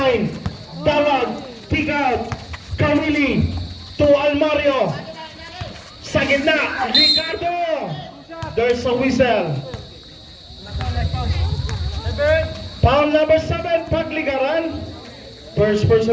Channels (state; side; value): identical; both; correlation 1.00